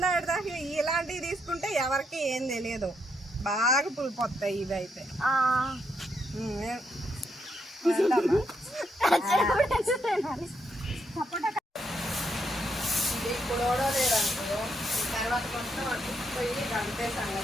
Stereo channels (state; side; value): normal; both; correlation 0.78